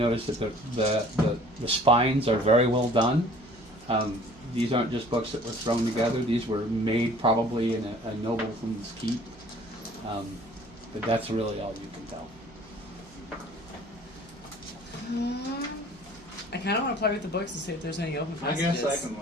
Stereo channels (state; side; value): noise; right; hum, 24 dB below the sound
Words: that the spines are very well done. These aren't just books that were thrown together. These were made probably in a nobleman's keep. But that's really all you can tell. I kind of want to play with the books and see if there's any open I passages. guess I can